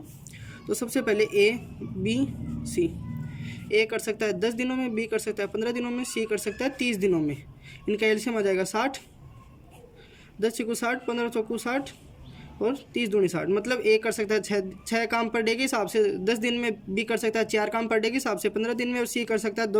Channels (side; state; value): both; identical; correlation 1.00